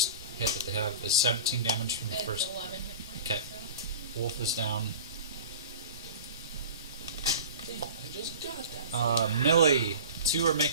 hit that they have is 17 damage from the It's first. 11 hit points. Okay. Wolf is down. I just got that. Millie, 2 are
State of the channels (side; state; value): both; inverted; correlation -0.36